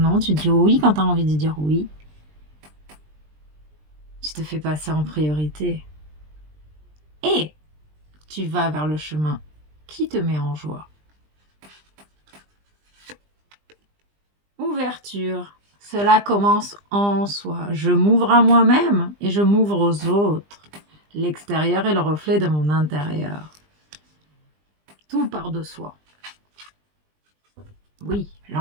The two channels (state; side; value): late; left; 20 ms